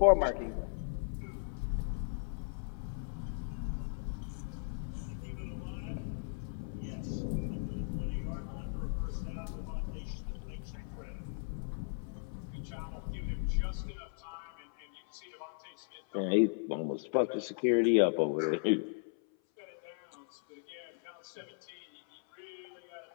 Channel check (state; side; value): silent; right; 53 dB below the other